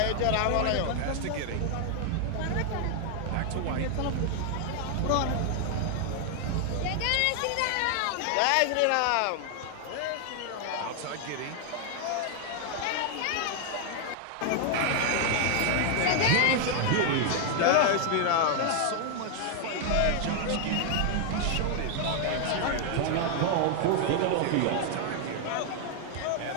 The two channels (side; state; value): both; different; correlation 0.00